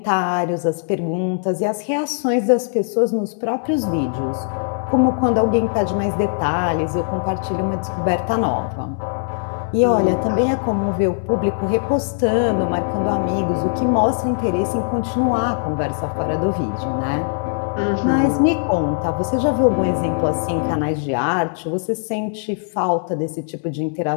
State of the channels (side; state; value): right; silent; digital silence